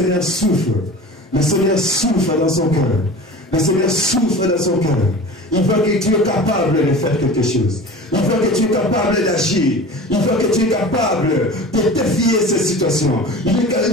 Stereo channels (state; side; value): normal; both; correlation 0.37